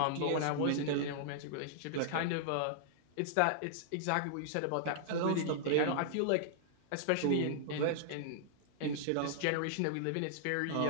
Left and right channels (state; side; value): different; both; correlation -0.01